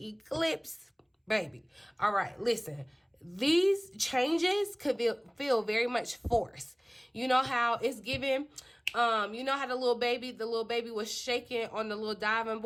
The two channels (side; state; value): both; identical; correlation 1.00